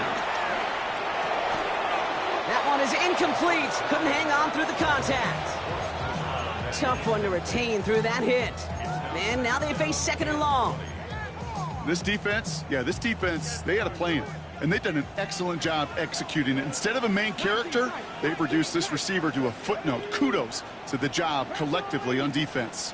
That one is incomplete. Couldn't hang on through the contact. Tough one to retain through that hit. And now they face 2nd and long. This defense, they got a plan. and they've done an excellent job executing it. Instead of a main character, they've reduced this receiver to a footnote. Kudos to the job collectively on defense.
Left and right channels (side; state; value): both; identical; correlation 1.00